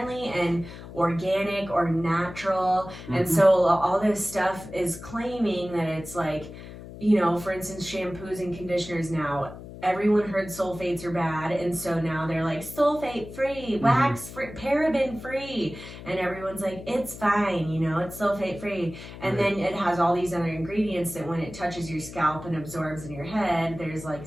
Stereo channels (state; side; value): noise; left; hum, 14 dB below the sound